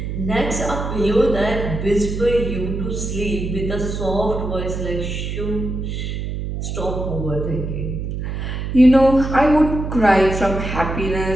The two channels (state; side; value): noise; right; hum, 4 dB below the sound